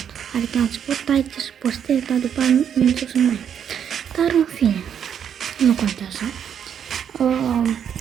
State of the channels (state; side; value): quieter; left; 8.5 dB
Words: Adică la început ai ce să postez, dar după aia nu știu să mai. Dar în fine, nu contează.